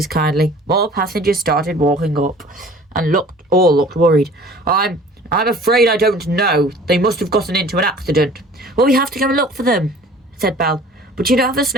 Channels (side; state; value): both; normal; correlation 0.48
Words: Kindly. More passengers started walking up and all looked worried. I'm afraid I don't know. They must have gotten into an accident. Well, we have to go and look for them, said Belle. But you don't have a